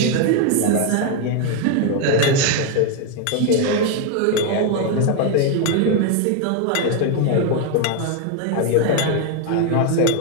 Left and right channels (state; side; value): different; both; correlation 0.01